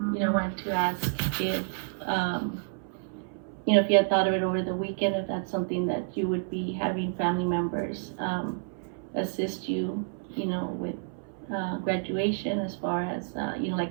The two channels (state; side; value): silent; left; 58 dB below the other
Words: wanted to ask if, if you had thought of it over the weekend, if that's something that you would be having family members assist you, with graduation, as far as,